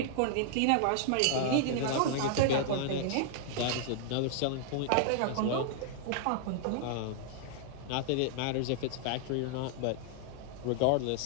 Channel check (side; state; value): both; different; correlation -0.01